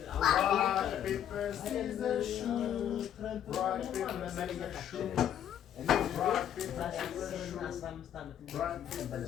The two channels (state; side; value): quieter; right; 10.1 dB